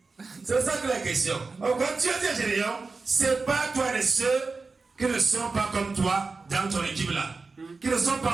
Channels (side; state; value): left; quieter; 4.1 dB